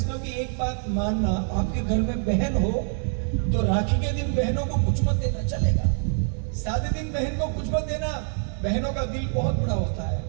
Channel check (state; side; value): silent; left; 56 dB below the other